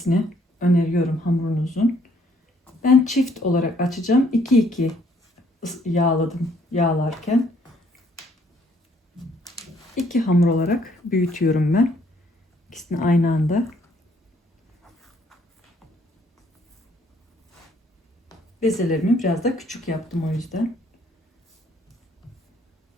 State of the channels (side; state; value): both; normal; correlation 0.65